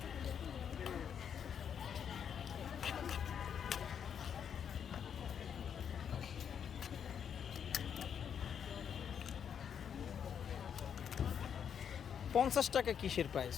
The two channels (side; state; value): right; quieter; 7.9 dB